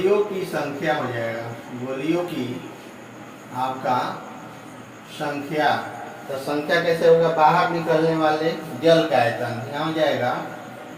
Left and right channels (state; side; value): identical; both; correlation 1.00